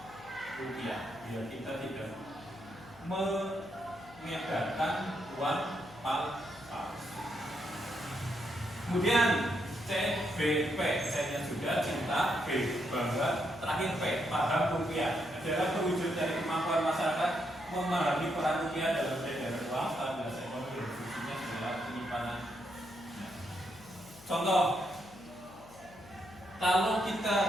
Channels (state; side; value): noise; left; hum, 22 dB below the sound